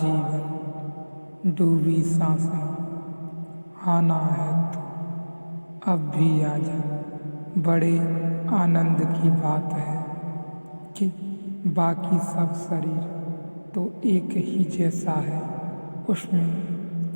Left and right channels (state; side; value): inverted; both; correlation -1.00